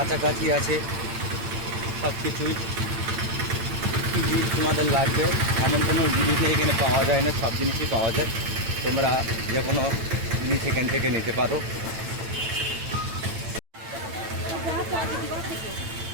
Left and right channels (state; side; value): late; left; 8.9 ms